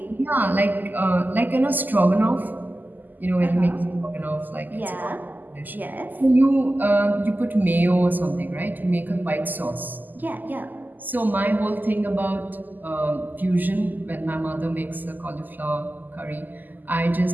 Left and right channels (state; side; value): late; left; 0.086 ms